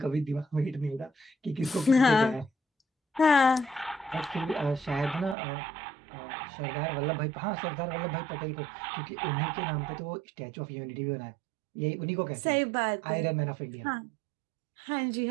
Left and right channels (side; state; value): left; drops out; at 5.4 s